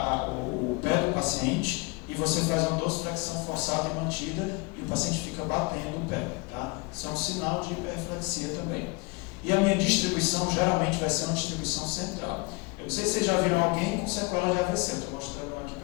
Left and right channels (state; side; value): quieter; right; 27.4 dB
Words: o pé do paciente e você faz uma dorsiflexão forçada e mantida e o paciente fica batendo o pé. Tá? Isso é um sinal de hiperreflexia também. E a minha distribuição geralmente vai ser uma distribuição central. Eu não sei se vocês já viram alguém com sequela de AVC, eu estou mostrando aqui